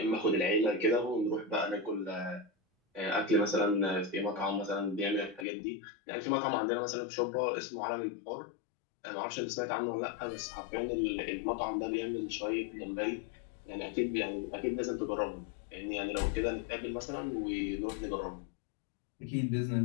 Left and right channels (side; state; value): right; drops out; at 5.5 s